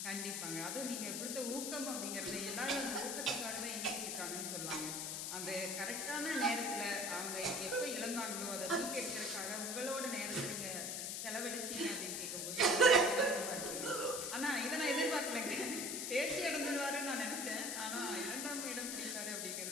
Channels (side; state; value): left; noise; hiss, 2 dB below the sound